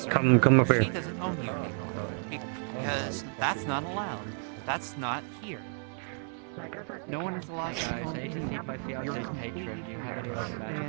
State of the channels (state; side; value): quieter; left; 39.0 dB